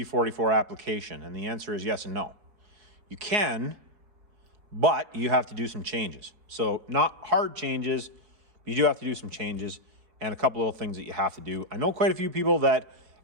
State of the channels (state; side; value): late; left; 4.7 ms